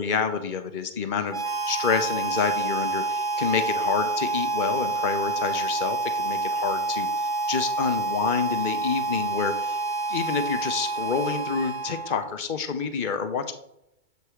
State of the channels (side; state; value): left; late; 2.2 ms